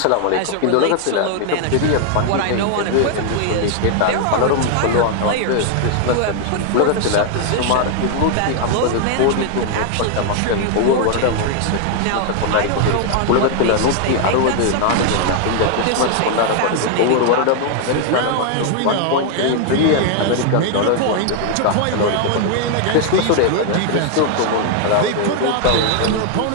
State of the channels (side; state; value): both; different; correlation 0.00